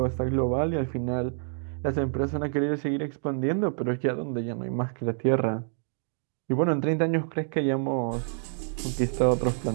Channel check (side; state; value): left; silent; digital silence